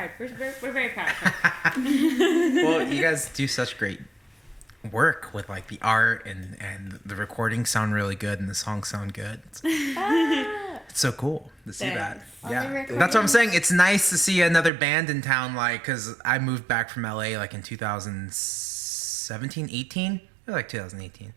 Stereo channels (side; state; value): left; drops out; at 14.7 s